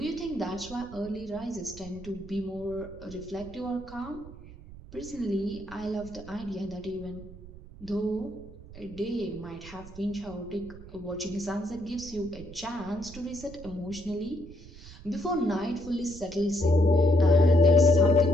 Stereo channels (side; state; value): right; noise; rumble, 16 dB below the sound